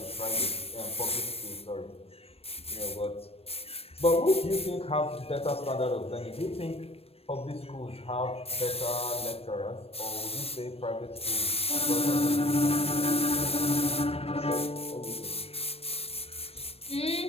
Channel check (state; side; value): late; right; 0.28 ms